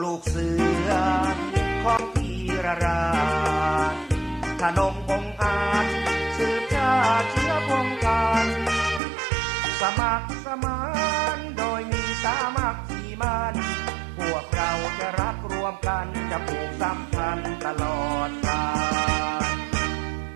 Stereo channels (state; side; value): drops out; left; at 9.0 s